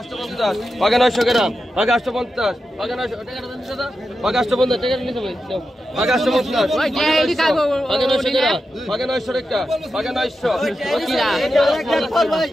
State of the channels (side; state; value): both; normal; correlation 0.89